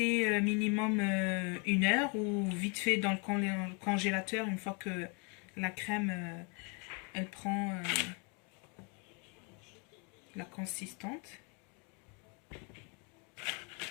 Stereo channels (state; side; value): quieter; right; 34.6 dB